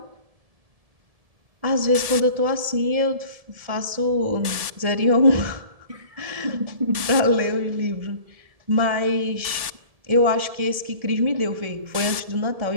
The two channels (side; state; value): left; late; 1.7 ms